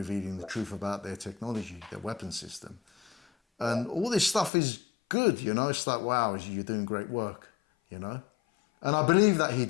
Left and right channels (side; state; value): right; drops out; at 4.5 s